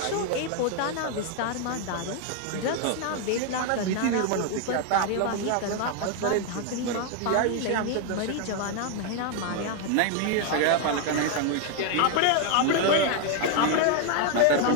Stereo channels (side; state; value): both; different; correlation 0.00